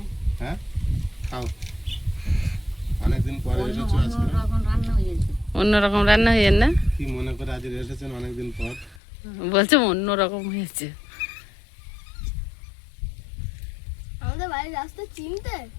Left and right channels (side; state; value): right; drops out; at 9.0 s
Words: হ্যাঁ, খাও। অনেকদিন পরে এসেছো আজকে। অন্যরকম রান্না হয়েছে। অন্যরকম রান্না হয়ে না? কি মনে করে আজ এসেছেন অনেকদিন পর? বলছে অন্যরকম হয়েছে। আমাদের বাড়ির রাস্তা চিনতে?